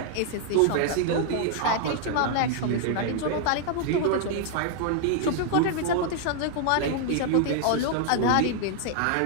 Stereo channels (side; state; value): both; different; correlation 0.00